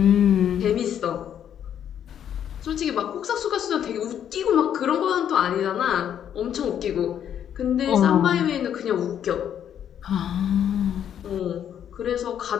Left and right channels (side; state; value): right; quieter; 9.5 dB